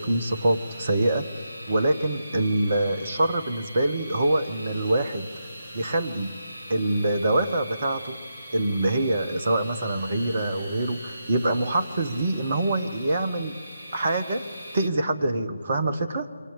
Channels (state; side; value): inverted; both; correlation -0.84